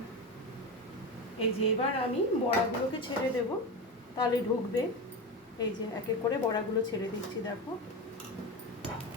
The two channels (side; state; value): both; normal; correlation 0.21